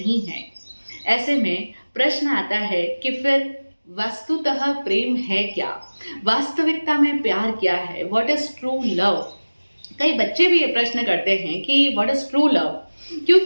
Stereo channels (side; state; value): both; inverted; correlation -1.00